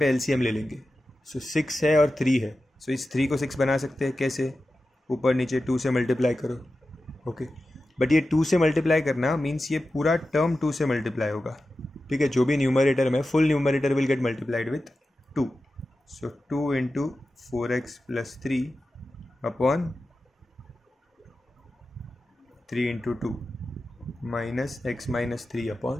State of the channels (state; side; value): normal; both; correlation 0.93